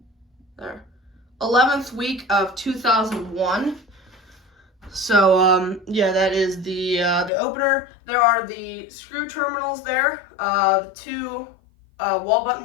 11th week of 2001. So yeah, that is the opener. There are the screw terminals there. The two wall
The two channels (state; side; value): drops out; right; at 7.3 s